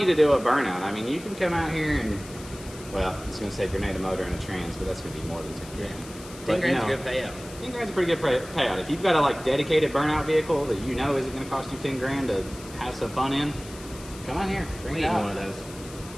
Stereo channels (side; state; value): left; noise; hiss, 17 dB below the sound